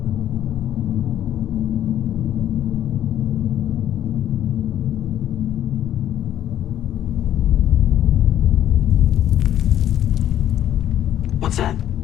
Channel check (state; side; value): quieter; right; 11.3 dB